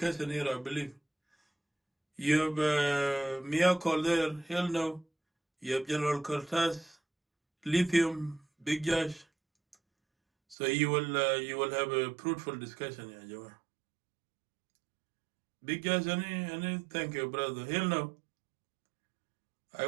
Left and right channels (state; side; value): drops out; left; at 10.6 s